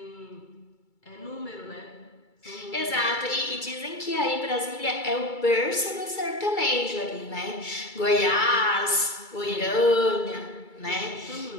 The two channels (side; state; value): right; late; 2.3 ms